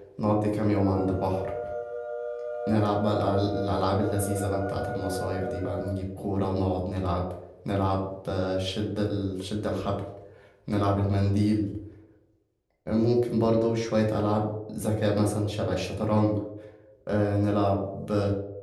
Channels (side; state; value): both; identical; correlation 1.00